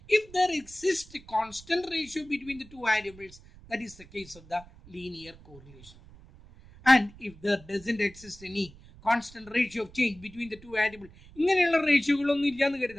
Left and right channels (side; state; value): right; noise; rumble, 22 dB below the sound